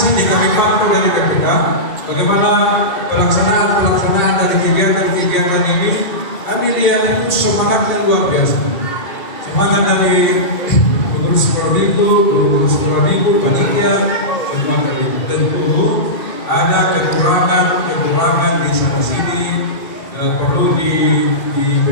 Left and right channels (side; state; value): right; late; 2.8 ms